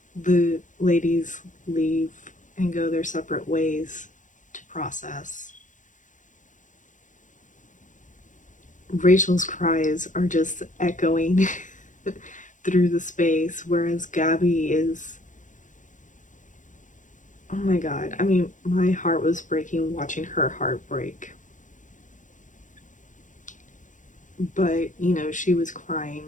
the ladies leave and go their separate ways to process. Rachel's cries are just echoing through the space, whereas Gabby is, oh my god, I mean, my heart was breaking watching her heart break. But, you know, she was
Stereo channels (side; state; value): right; late; 0.37 ms